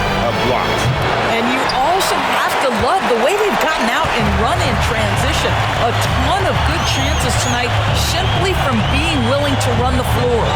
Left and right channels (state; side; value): identical; both; correlation 1.00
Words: blocks. And you also have to love the way they've gotten out and run in transition. A ton of good chances tonight simply from being willing to run the floor.